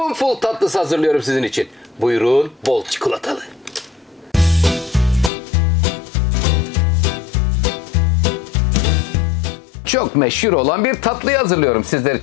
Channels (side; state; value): right; drops out; at 5.3 s